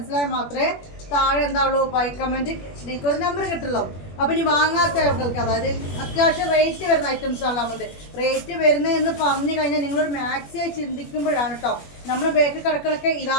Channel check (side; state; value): right; late; 21 ms